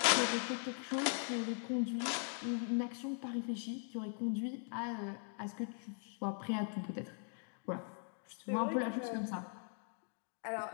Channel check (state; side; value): silent; right; 51 dB below the other